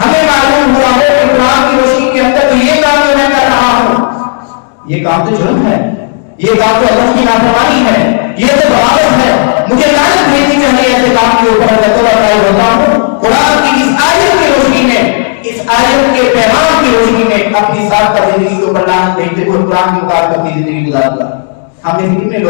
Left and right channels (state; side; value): silent; right; 67 dB below the other